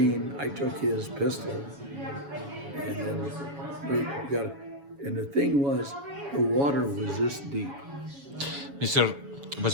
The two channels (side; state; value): left; late; 7.1 ms